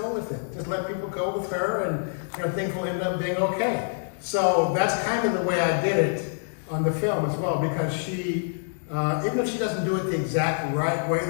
with it. Just let people go with her, and things will end up being okay. So that's kind of the way I did it on the film as well, because she, even if she doesn't do it the exact right way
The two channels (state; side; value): silent; right; digital silence